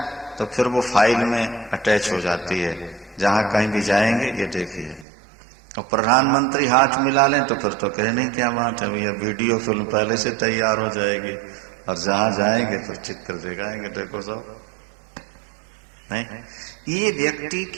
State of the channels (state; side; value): drops out; left; at 5.1 s